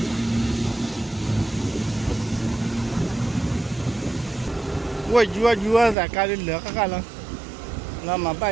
वो जुआ जाकर ले का काला ना मापा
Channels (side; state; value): left; drops out; at 6.0 s